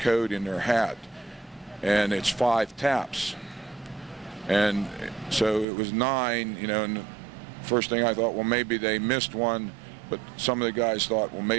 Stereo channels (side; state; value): left; drops out; at 5.7 s